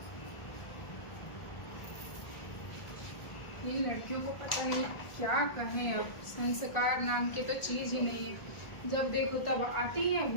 इन लड़कियों को पता नहीं क्या कहें, अब संस्कार नाम के तो चीज ही नहीं है। जब देखो तब आती है,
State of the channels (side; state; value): right; late; 1.4 ms